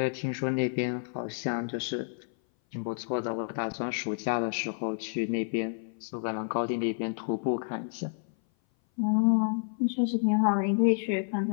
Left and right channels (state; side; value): silent; right; 56 dB below the other